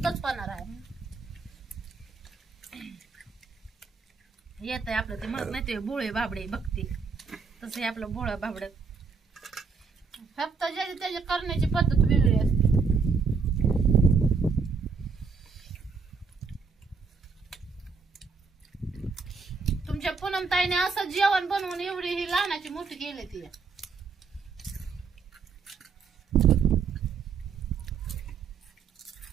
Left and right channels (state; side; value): quieter; left; 5.0 dB